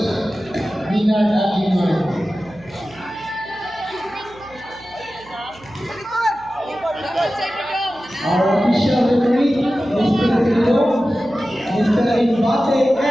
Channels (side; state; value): right; noise; hum, 23 dB below the sound